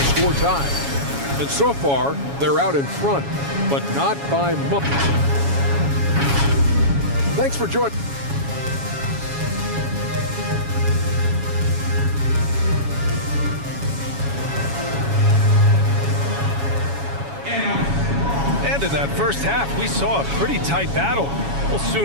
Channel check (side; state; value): left; late; 7.2 ms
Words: score tied. And so far, they're out in front, but not by much. Thanks for joining. And in that first half, we saw a pretty tight battle. We'll